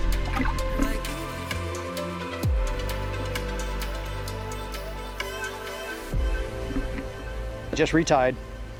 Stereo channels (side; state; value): both; identical; correlation 1.00